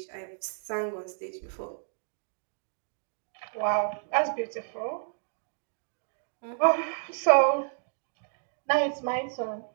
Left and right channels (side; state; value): left; silent; digital silence